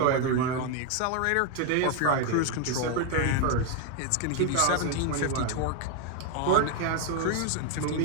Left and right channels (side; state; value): both; different; correlation 0.01